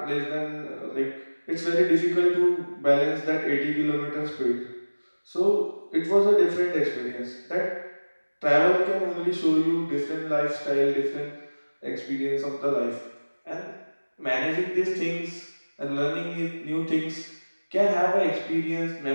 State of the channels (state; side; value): inverted; both; correlation -1.00